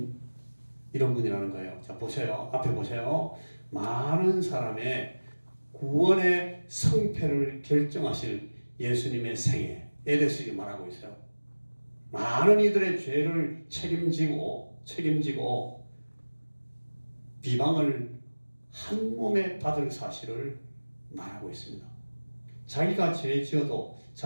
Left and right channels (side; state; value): both; inverted; correlation -1.00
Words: 분이라는 거예요. 자, 보세요. 앞에 보세요. 많은 사람의 구원의 성패를 결정하실 예수님의 생애에 대해서 말하고 있어요. 많은 이들의 죄를 책임지고 비방을 한 몸에 받을 사실을 말하고 있습니다. 자기가 죄 지어도